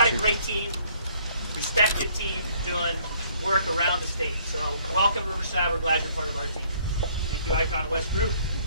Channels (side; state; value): both; inverted; correlation -0.62